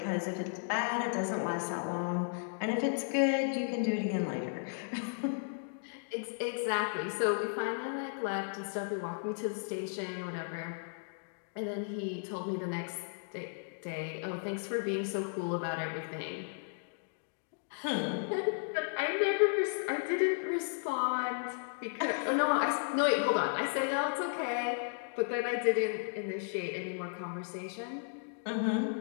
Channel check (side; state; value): right; silent; digital silence